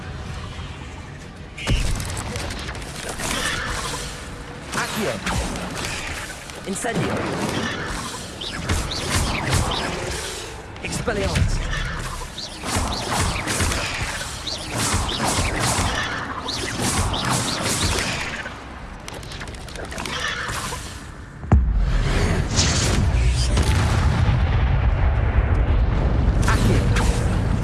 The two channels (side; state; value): both; identical; correlation 1.00